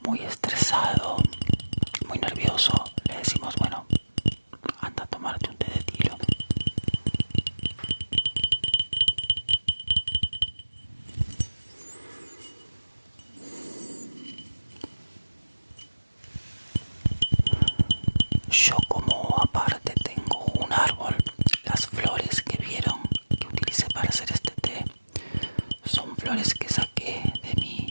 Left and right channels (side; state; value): both; inverted; correlation -1.00